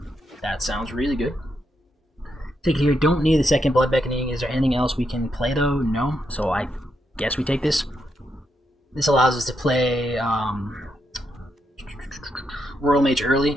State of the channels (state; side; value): normal; both; correlation 0.81